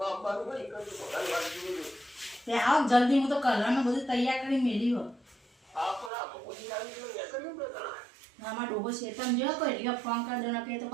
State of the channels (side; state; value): left; drops out; at 6.1 s